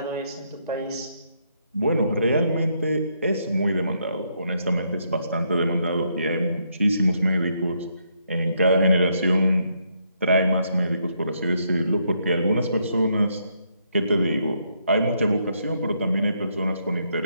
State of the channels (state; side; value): inverted; both; correlation -0.75